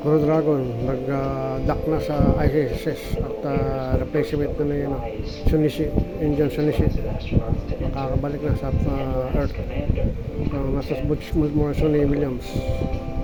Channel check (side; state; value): both; identical; correlation 1.00